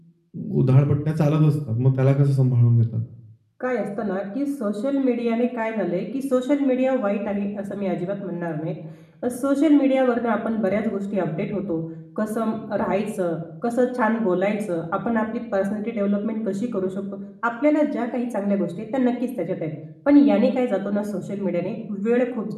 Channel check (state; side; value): identical; both; correlation 1.00